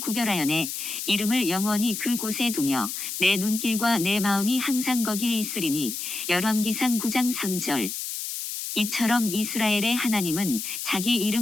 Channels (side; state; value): left; noise; hiss, 5 dB below the sound